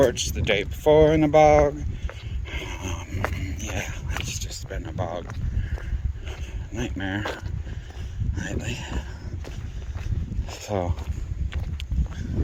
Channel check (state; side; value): identical; both; correlation 1.00